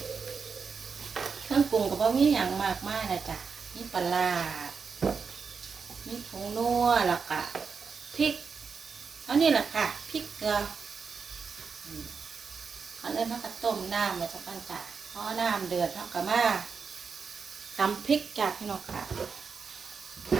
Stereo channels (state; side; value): quieter; left; 5.5 dB